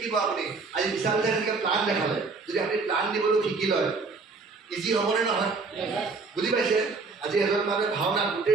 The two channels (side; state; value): left; quieter; 4.2 dB